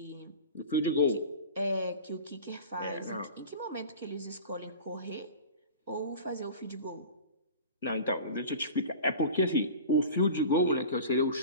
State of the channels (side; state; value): both; inverted; correlation -0.37